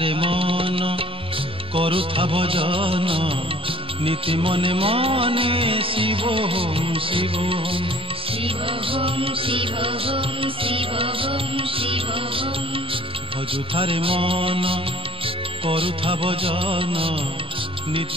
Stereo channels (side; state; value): both; normal; correlation 0.52